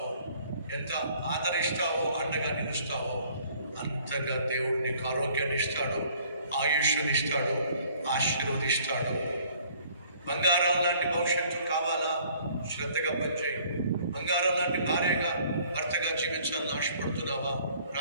ఎంత ఆదరిస్తావో, అండగా నిలుస్తావో అంతగా దేవుడు నీకు ఆరోగ్యాన్ని ఇస్తాడు, ఆయుష్ని ఇస్తాడు, ఆశీర్వదిస్తాడు. బంగారం లాంటి భవిష్యత్తు కావాలా? శ్రద్ధగా పనిచేయి. బంగారం లాంటి భార్యగా భర్తగా జీవించాలని ఆశపడుతున్నావా?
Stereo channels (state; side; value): inverted; both; correlation -0.58